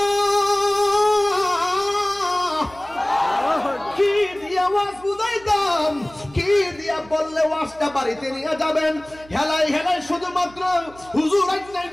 কি দিয়া ওয়াজ বুঝাইতাম কি দিয়া বললে ওয়াজটা বাড়িতে নিয়ে যাবেন হেলাই হেলাই শুধুমাত্র হুজুর আইনাই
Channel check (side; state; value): right; noise; hum, 23 dB below the sound